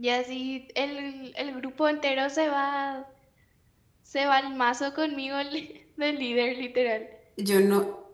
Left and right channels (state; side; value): identical; both; correlation 1.00